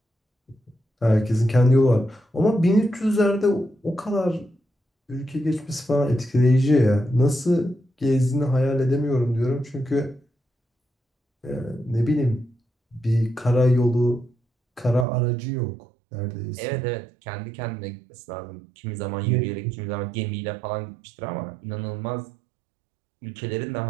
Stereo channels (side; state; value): left; drops out; at 15.1 s